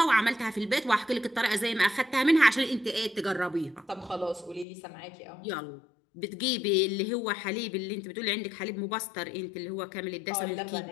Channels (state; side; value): drops out; right; at 4.7 s